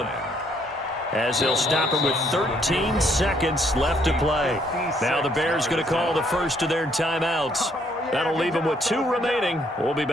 as they'll stop him with 13 seconds left to play. Now the Bears going to call the first of their timeouts. That'll leave them with 2 remaining. We'll be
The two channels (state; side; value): normal; both; correlation 0.68